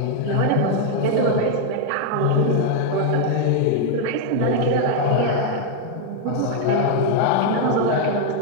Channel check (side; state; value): both; different; correlation 0.00